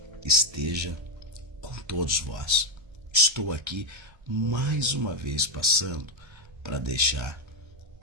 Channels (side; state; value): left; late; 1.3 ms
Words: esteja com todos vós. Estou aqui mais uma vez passando para deixar